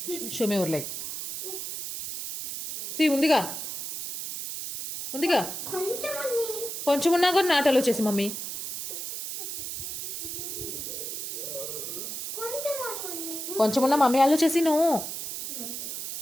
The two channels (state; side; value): noise; right; hiss, 6 dB below the sound